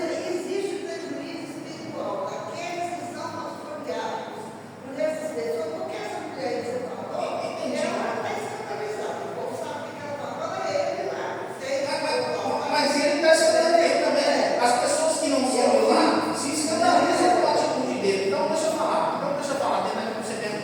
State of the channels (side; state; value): both; identical; correlation 1.00